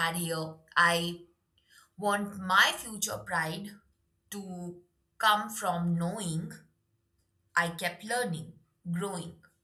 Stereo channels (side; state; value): both; identical; correlation 1.00